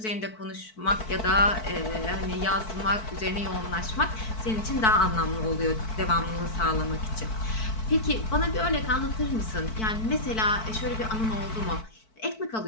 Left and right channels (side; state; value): right; late; 4.6 ms